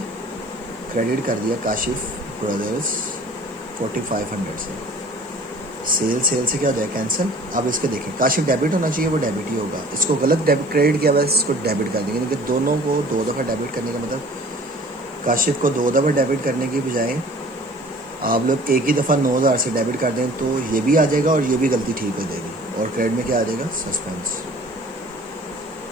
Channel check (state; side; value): noise; left; hiss, 29 dB below the sound